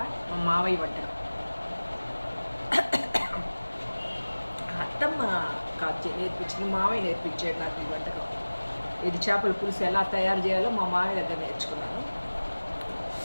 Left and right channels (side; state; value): both; inverted; correlation -1.00